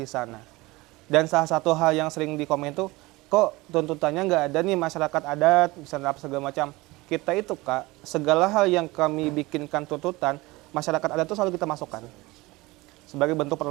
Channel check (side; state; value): left; quieter; 21.5 dB